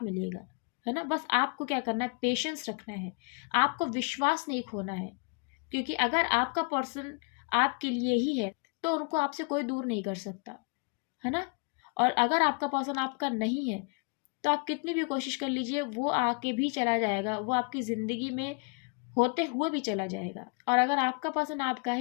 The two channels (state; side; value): quieter; right; 34.1 dB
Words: मिलेगा, है ना। बस आपको क्या करना है, पेशेंस रखना है, आपको विश्वास नहीं खोना है। क्योंकि अगर आपका पर्सन आपके लिए ही है तो उनको आपसे कोई दूर नहीं कर सकता, है ना। और अगर आपका पर्सन आपका नहीं है तो आप कितनी भी कोशिश कर लीजिए, वो आके भी चला जाएगा, वो आपकी ज़िंदगी में होते हुए भी चला जाएगा। और अगर आपका पर्सन आपका